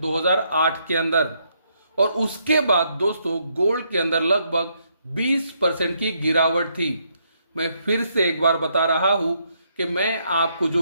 2008 के अंदर और उसके बाद दोस्तों गोल्ड के अंदर लगभग 20% की गिरावट थी। मैं फिर से एक बार बता रहा हूं कि मैं आपको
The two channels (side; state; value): both; inverted; correlation -0.74